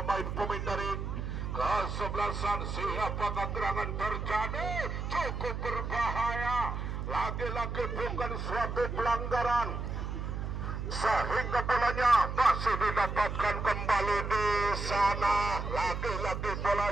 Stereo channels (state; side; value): noise; right; hum, 4 dB below the sound